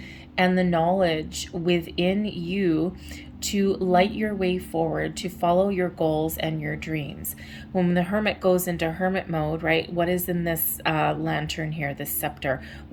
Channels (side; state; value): both; identical; correlation 1.00